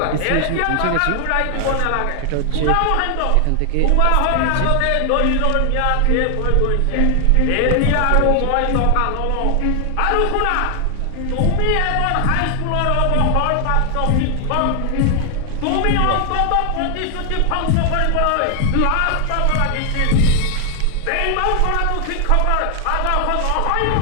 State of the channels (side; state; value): both; different; correlation 0.00